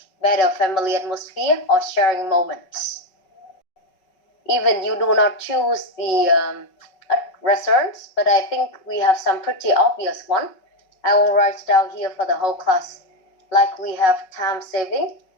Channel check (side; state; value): right; late; 5.3 ms